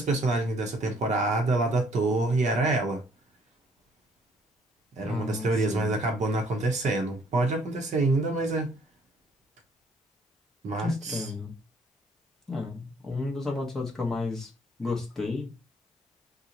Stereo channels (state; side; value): normal; both; correlation 0.63